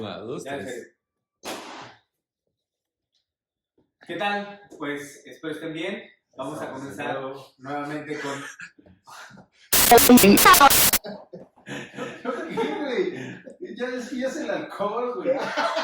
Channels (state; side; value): identical; both; correlation 1.00